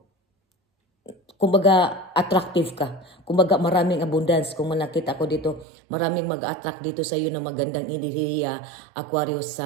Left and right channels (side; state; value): left; drops out; at 5.7 s